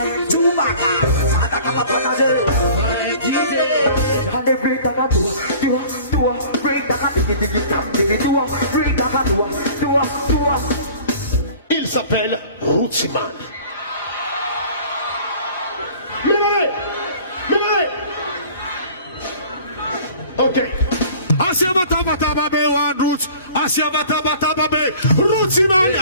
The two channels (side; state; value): both; inverted; correlation -0.47